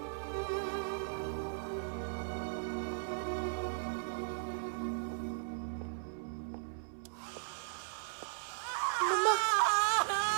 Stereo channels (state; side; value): silent; left; 53 dB below the other